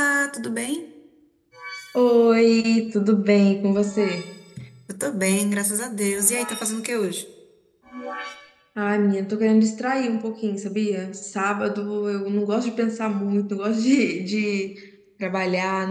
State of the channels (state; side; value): identical; both; correlation 1.00